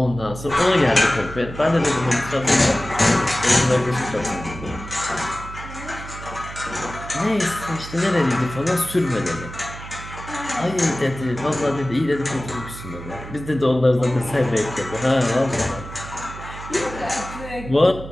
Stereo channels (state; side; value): noise; right; hum, 12 dB below the sound